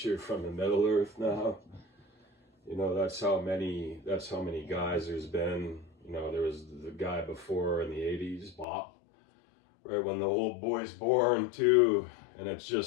from the Middle Earth now. You know, that's how many guys there's been. You know, there was the guy before in the 80s, Bop, right when the old boy's born too, and it's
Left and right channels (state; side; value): drops out; right; at 8.7 s